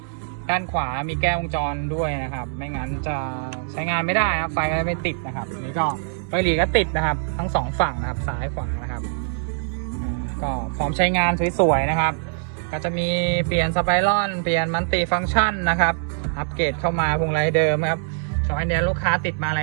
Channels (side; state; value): left; silent; digital silence